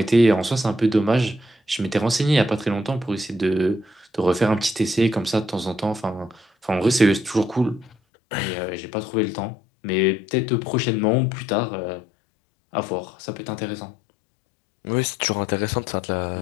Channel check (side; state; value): right; drops out; at 7.9 s